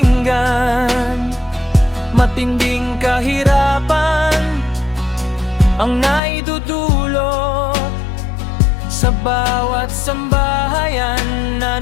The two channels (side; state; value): right; drops out; at 6.2 s